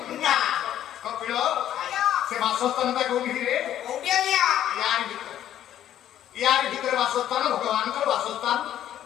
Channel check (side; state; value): right; quieter; 11.4 dB